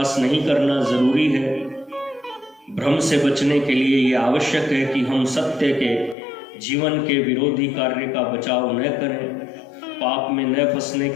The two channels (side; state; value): right; drops out; at 6.2 s